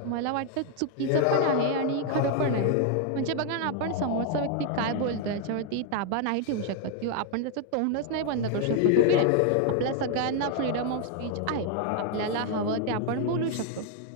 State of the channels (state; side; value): different; both; correlation 0.00